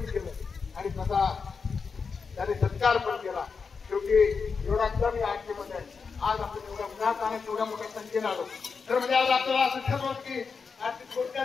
केलं आणि तसा त्याने सत्कार पण केला. शेवटी एवढा कमी आठवीमध्ये आज आपण एवढ्या उन्हात आणि एवढ्या मोठ्या संख्येने आलो. तर म्हणजे आज आपल्याला असं ठरवलं की आर्थिक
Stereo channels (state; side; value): quieter; right; 5.3 dB